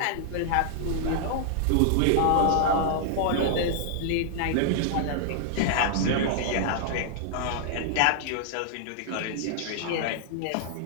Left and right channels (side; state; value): both; different; correlation -0.01